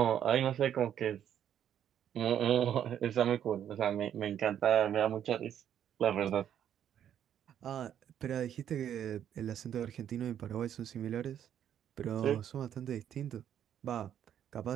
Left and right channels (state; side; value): quieter; left; 9.8 dB